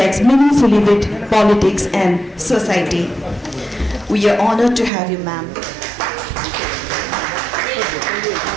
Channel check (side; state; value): left; drops out; at 4.9 s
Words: meaningfully with politics and society. We are honored to have you, ma'am.